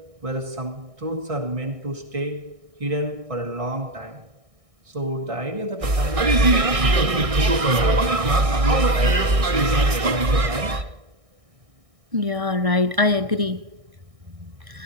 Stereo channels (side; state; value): left; late; 1.6 ms